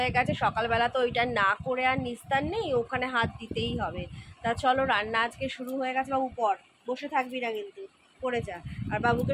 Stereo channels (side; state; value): both; identical; correlation 1.00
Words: গেছে, সকালবেলা তো ওইটা না করে আর নিস্তার নেই, ওখানে হাত দিতেই হবে। তা চলো, রান্না আজকে শুরু হয়ে গেছে। বাবু পড়, বসে থাকবি না কিন্তু, পড়ে যা। আর বাবুকে